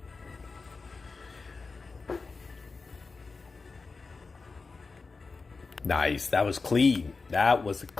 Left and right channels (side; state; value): right; quieter; 4.2 dB